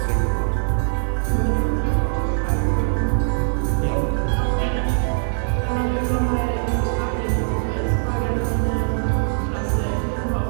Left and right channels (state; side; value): silent; left; digital silence